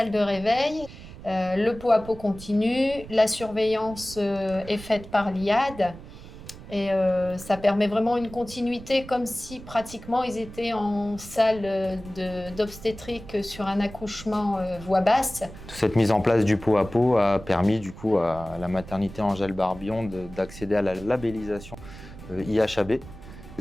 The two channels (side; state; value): right; noise; rumble, 15 dB below the sound